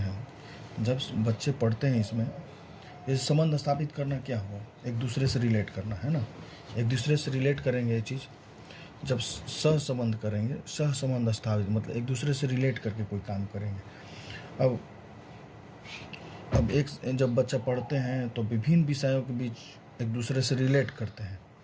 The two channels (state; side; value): identical; both; correlation 1.00